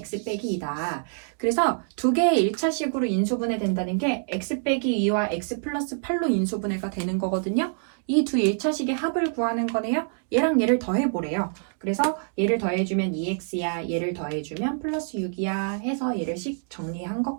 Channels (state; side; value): silent; left; digital silence